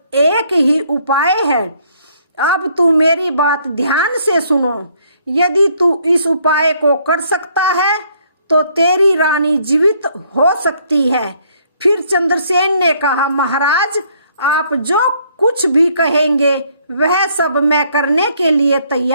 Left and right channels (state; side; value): inverted; both; correlation -0.66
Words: एक ही उपाय है। अब तू मेरी बात ध्यान से सुनो। यदि तू इस उपाय को कर सकता है तो तेरी रानी जीवित हो सकती है। फिर चंद्रसेन ने कहा, महाराज, आप जो कुछ भी कहेंगे वह सब मैं करने के लिए